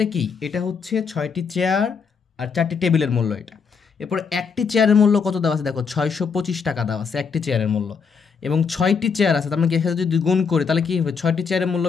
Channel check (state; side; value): quieter; right; 5.7 dB